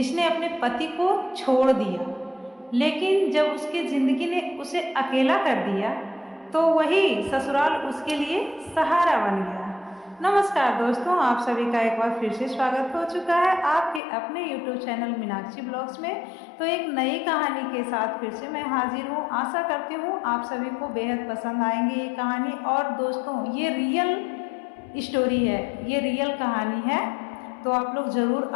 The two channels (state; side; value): drops out; right; at 14.0 s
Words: अपने पति को छोड़ दिया, लेकिन जब उसकी ज़िंदगी ने उसे अकेला कर दिया तो वही ससुराल उसके लिए सहारा बन गया। नमस्कार दोस्तों, आप सभी का एक बार फिर से स्वागत हो चुका है आपके अपने YouTube चैनल मीनाक्षी ब्लॉग्स में। तो एक नई कहानी के साथ फिर से मैं हाजिर हूँ। आशा करती हूँ आप सभी को बेहद पसंद आएंगी ये कहानी। और दोस्तों, ये रियल स्टोरी है, ये रियल कहानी है, तो आप लोग ज़रूर